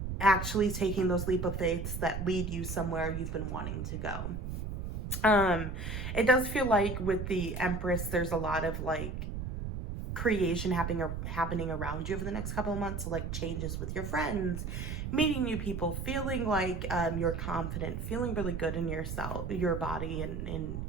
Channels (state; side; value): noise; right; rumble, 5 dB below the sound